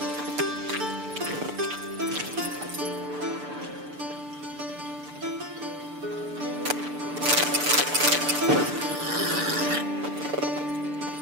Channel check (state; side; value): late; left; 6.8 ms